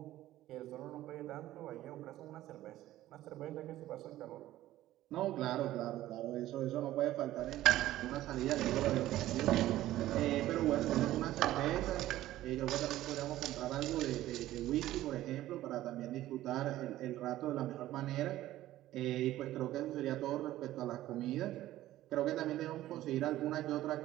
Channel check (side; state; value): left; quieter; 14.7 dB